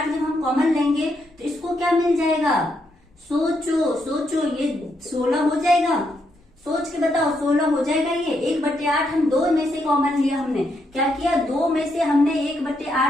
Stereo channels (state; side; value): normal; both; correlation 0.78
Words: जब हम कॉमन लेंगे तो इसको क्या मिल जाएगा, सोचो ये 16 हो जाएगा। सोच के बताओ 16 हो जाएगा ये। 1/8 हम 2 में से कॉमन लिया, हमने क्या किया, 2 में से हमने